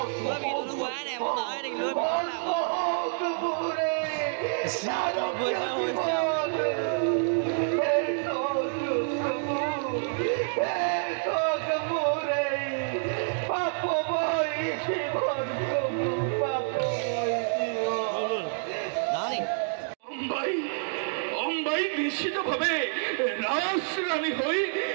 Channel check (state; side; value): silent; left; digital silence